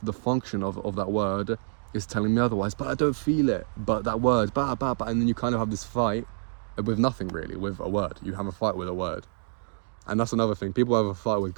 function of that word is telling me otherwise, but I don't feel it. But that word, and then you kind of have this fight with nothing really, with a word. You have a fight with a word. And that's another thing. People have a fight with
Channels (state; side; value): silent; left; digital silence